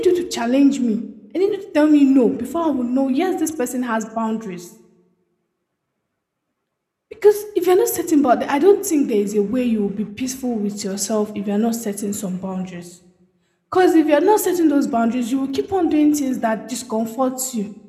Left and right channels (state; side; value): identical; both; correlation 1.00